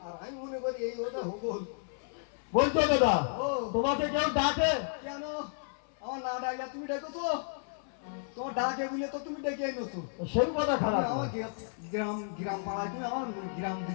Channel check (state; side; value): silent; right; 56 dB below the other